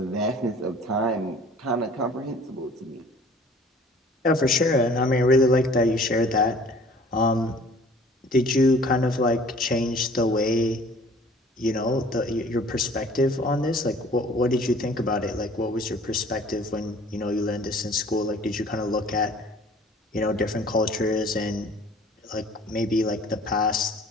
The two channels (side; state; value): both; normal; correlation 0.50